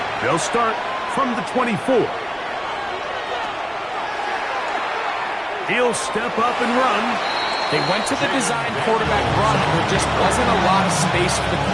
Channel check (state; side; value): identical; both; correlation 1.00